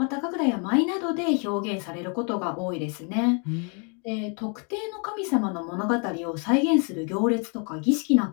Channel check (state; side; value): quieter; right; 37.7 dB